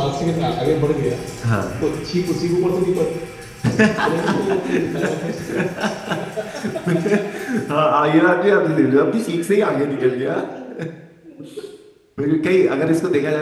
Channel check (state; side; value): identical; both; correlation 1.00